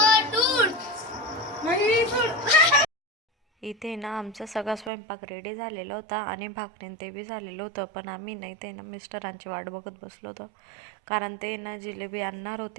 इथे ना आमचा सगळा स्वयंपाक रेडी झालेला होता आणि भाकरीन ते बी झालेलं होतं, पण आम्ही नाही ते ना मिस्टरांची वाट बघत बसलो होतो, कारण ते ना जिलेबी आणणार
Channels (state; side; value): drops out; left; at 4.9 s